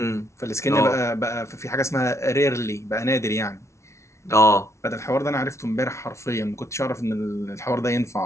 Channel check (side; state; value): right; late; 0.13 ms